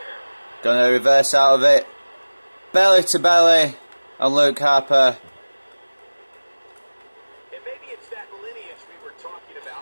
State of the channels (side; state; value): both; inverted; correlation -1.00